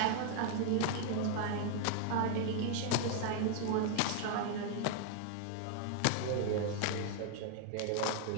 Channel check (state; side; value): different; both; correlation 0.00